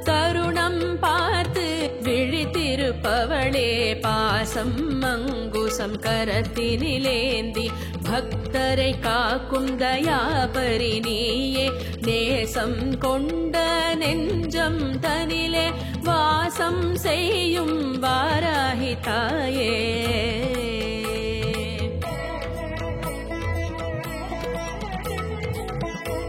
தருணம் பார்த்து விழித்திருப்பவளே பாசம் அங்குசம் கரத்தினிலேந்தி பக்தரை காக்கும் தயாபரி நீயே நேசம் கொண்ட நெஞ்சம் தனிலே வாசம் செய்யும் வாராகி தாயே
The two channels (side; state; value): both; identical; correlation 1.00